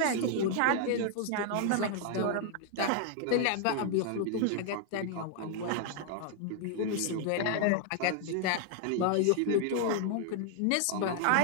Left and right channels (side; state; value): both; different; correlation 0.00